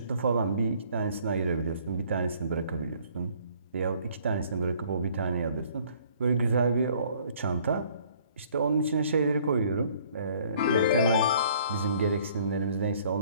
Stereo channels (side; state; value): both; inverted; correlation -0.59